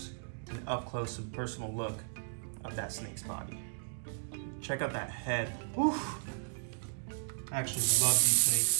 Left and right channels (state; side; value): silent; left; digital silence